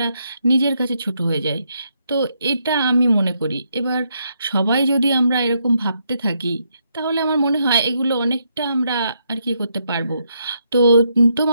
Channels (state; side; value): inverted; both; correlation -0.78